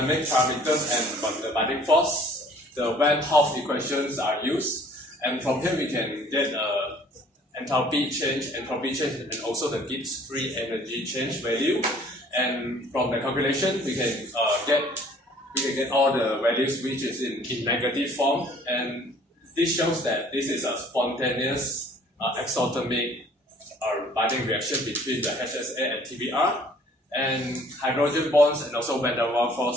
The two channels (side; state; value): both; normal; correlation 0.55